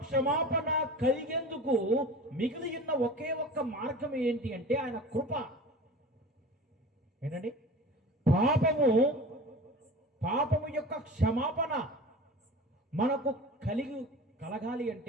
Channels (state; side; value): normal; both; correlation 0.37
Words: క్షమాపణ కలిగేందుకు మిగిలి ఉన్న ఒకే ఒక్క మార్గం ఏంటి అంటే ఆయన కృప. ఏంటండి? పాపము యొక్క క్షమాపణ మనకు కలగాలి